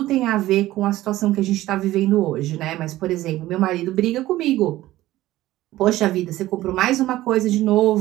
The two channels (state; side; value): quieter; left; 15.9 dB